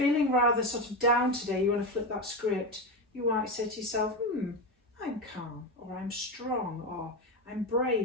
rather sort of down today, you want to flip that script, you might say to yourself, I'm calm, or I'm strong, or I'm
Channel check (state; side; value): normal; both; correlation 0.15